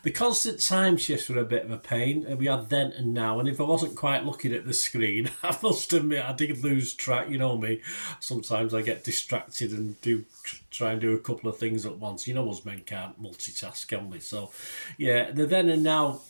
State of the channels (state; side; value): inverted; both; correlation -1.00